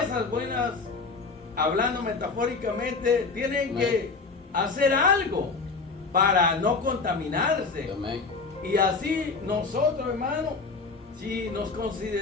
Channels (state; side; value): quieter; right; 4.2 dB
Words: buenas, hablando metafóricamente, tienen que hacer algo para no contaminarse. Amén. Y así nosotros, hermano, si nos